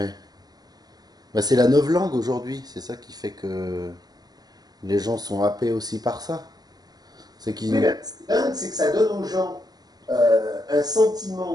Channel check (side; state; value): left; late; 0.19 ms